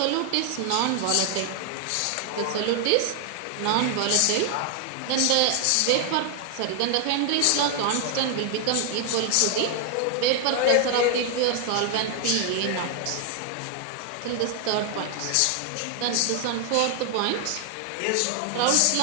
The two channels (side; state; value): both; different; correlation 0.00